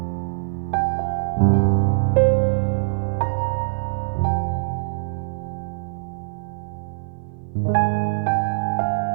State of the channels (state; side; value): silent; left; 58 dB below the other